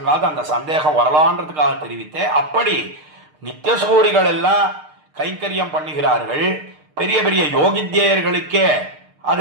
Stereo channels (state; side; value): late; left; 6.6 ms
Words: அந்த சந்தேகம் வரலான்றதுக்காக தெரிவித்தேன். அப்படி நித்தியசூரிகள் எல்லாம் கைங்கரியம் பண்ணுகிறார்கள். பெரிய பெரிய யோகித்யர்களுக்கே